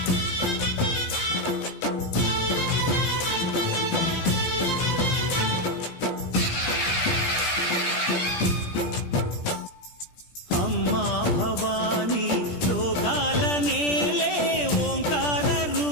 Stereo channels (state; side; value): late; right; 17 ms